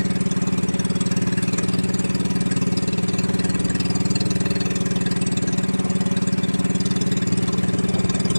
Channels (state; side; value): inverted; both; correlation -1.00